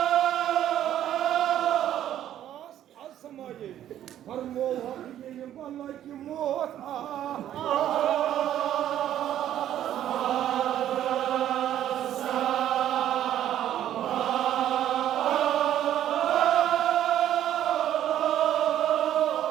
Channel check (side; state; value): left; quieter; 11.5 dB